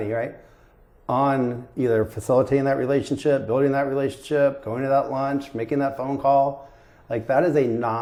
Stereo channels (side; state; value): both; identical; correlation 1.00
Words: right? On either facilitating that relationship, building that relationship, going to that lunch, making that phone call. Like, that is a